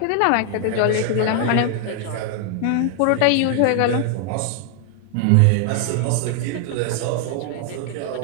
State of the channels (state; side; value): different; both; correlation 0.00